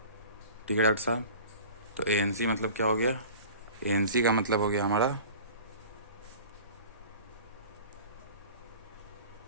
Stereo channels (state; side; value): inverted; both; correlation -0.42